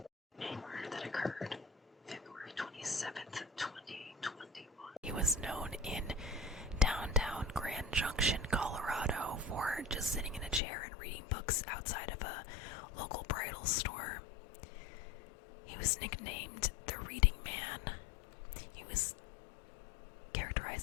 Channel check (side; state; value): right; drops out; at 10.6 s